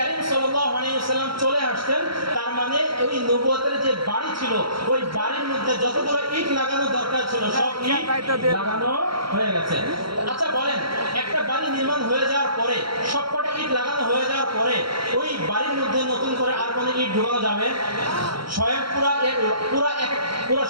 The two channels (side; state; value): left; late; 0.74 ms